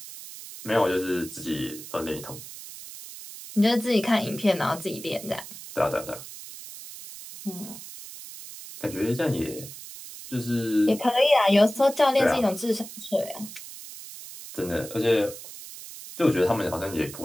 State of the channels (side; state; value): right; noise; hiss, 13 dB below the sound